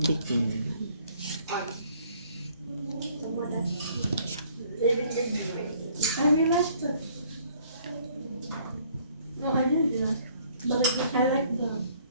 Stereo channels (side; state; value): both; inverted; correlation -0.61